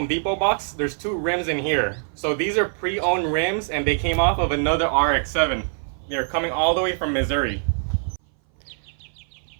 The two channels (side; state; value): left; silent; 59 dB below the other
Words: Depot box, there's two rims in here. So these are pre-owned rims and they came off of another RX-7. They're coming all the way from Missouri.